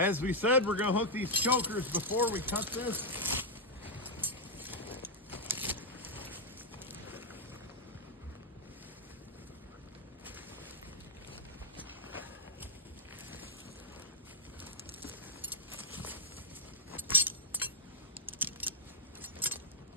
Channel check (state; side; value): normal; both; correlation -0.06